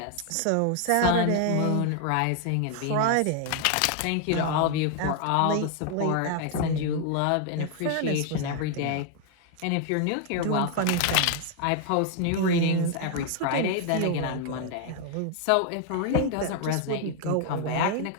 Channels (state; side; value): different; both; correlation 0.00